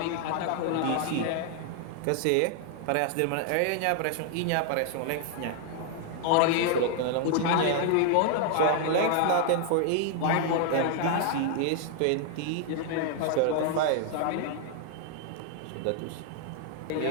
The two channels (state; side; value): different; both; correlation 0.00